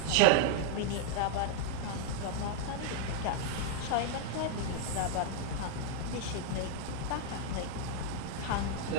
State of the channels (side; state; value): both; different; correlation 0.00